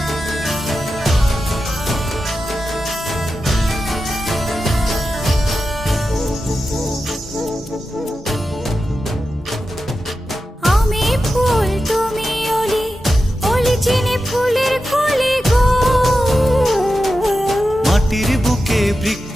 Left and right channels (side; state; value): both; normal; correlation 0.91